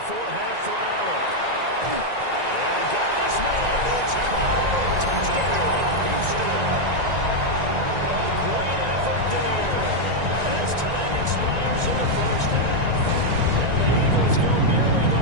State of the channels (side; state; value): left; late; 1.9 ms